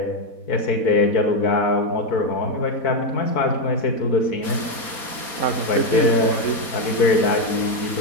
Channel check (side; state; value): right; late; 4.3 ms